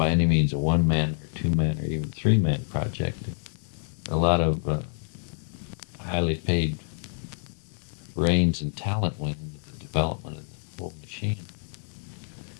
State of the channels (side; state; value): right; silent; 60 dB below the other